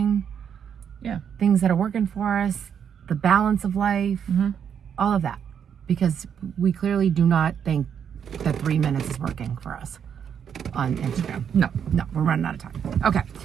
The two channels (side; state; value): left; quieter; 8.0 dB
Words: things that are working for us, the balance of life, all of that. Because we clearly do not think that 3 minutes is working for us on Instagram. No, we're running out of time. Okay.